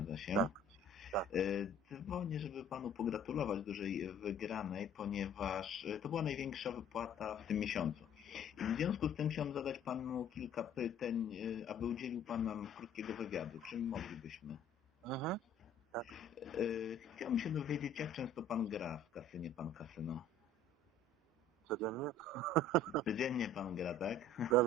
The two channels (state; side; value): normal; both; correlation 0.53